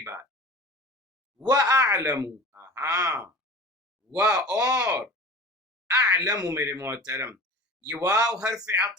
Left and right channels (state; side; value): normal; both; correlation 0.37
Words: بات. وَأَعْلَمُ، ہاں، اور اعلم میرے محترم، یہ واو حرف